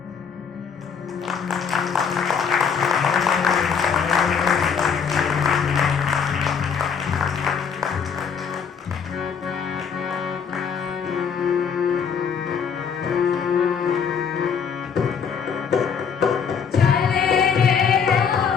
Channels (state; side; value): quieter; right; 6.6 dB